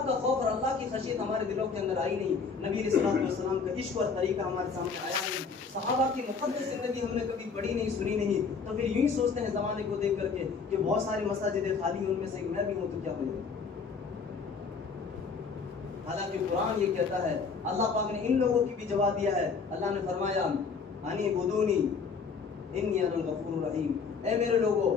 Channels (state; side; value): quieter; right; 5.3 dB